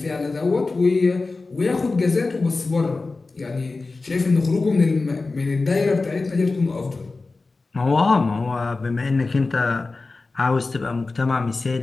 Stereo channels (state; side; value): quieter; right; 3.7 dB